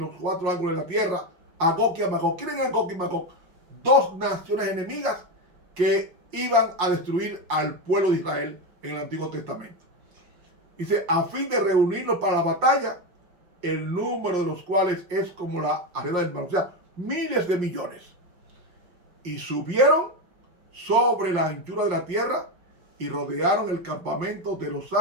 4 ángulos de la tierra, a Gog y a Magog. ¿Quién es Gog y Magog? 2 naciones enemigas que iban a destruir al pueblo de Israel en el Antiguo Testamento. Dice, a fin de reunirlos para la batalla, el número de los cuales es como la arena del mar, o sea, miles de millones. Y subieron sobre la anchura de la tierra y rodearon el campamento de los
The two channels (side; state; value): left; late; 5.6 ms